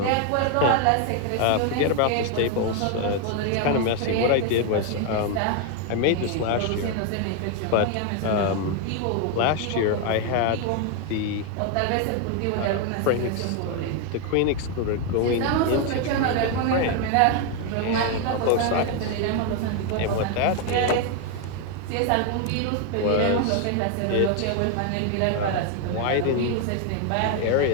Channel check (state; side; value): different; both; correlation 0.01